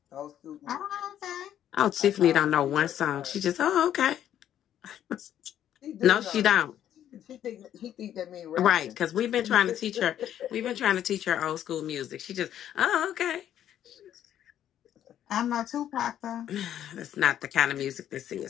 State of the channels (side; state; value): right; quieter; 10.8 dB